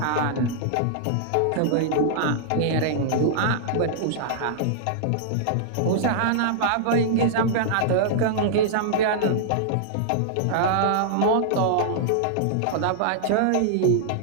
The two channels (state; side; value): different; both; correlation -0.01